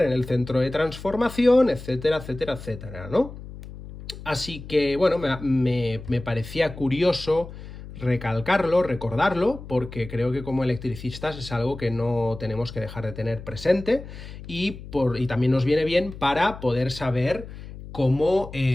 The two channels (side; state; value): left; noise; hum, 13 dB below the sound